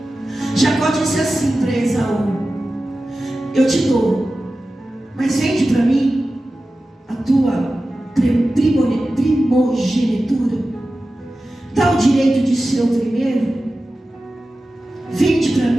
Jacó disse assim para Esaú: eu te dou, mas vende para mim a tua primogenitura, dá o direito de ser o primeiro, vende para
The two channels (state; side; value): normal; both; correlation 0.95